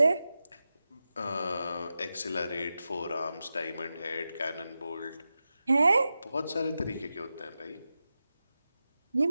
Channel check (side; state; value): both; inverted; correlation -0.92